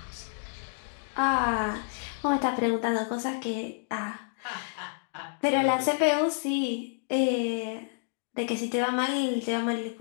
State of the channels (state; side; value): silent; right; digital silence